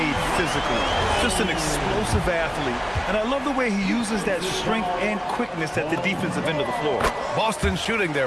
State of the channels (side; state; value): both; identical; correlation 1.00